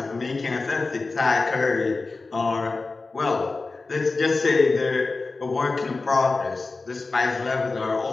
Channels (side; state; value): right; quieter; 3.7 dB